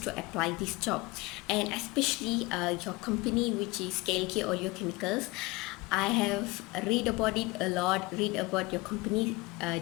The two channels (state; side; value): quieter; right; 22.9 dB